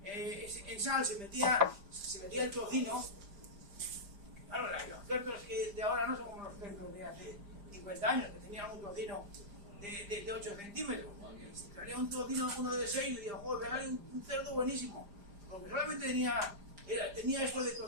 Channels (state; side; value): late; left; 5.0 ms